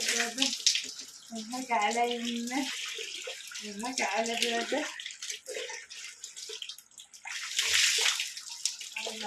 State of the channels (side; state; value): both; identical; correlation 1.00